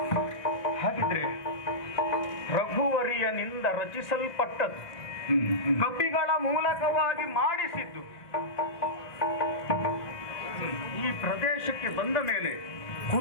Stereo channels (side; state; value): right; late; 1.7 ms